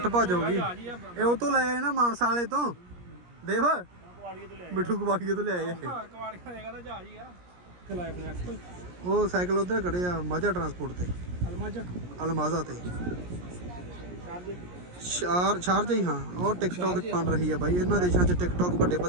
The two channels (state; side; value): late; left; 17 ms